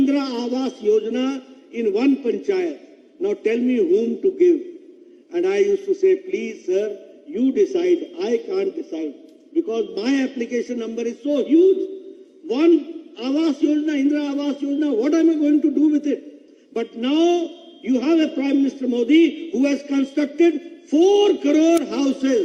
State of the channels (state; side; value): identical; both; correlation 1.00